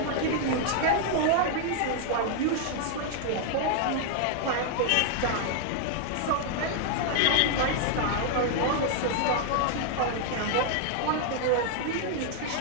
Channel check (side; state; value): both; different; correlation 0.00